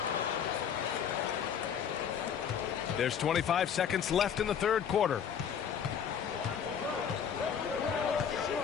There's 25 seconds left in the third quarter.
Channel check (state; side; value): quieter; right; 7.9 dB